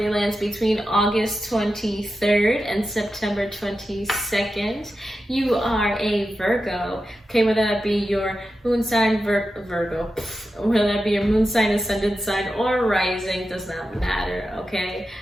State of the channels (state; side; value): normal; both; correlation 0.91